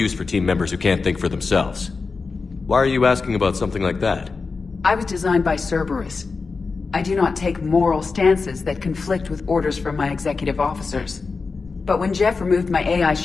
for team members who can't think for themselves. Why are you asking about something like that? I was designed by Cerberus. I do not take moral stances that conflict with orders from my executive officers. But when Jeff removed my AI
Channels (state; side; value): quieter; right; 4.4 dB